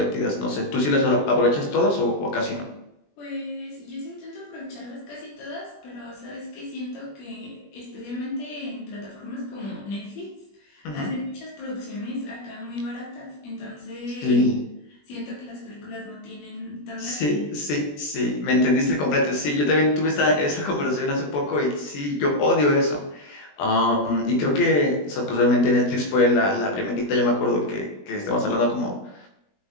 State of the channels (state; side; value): late; right; 21 ms